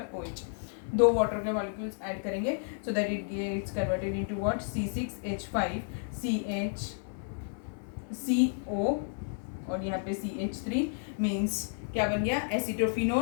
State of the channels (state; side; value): silent; right; 57 dB below the other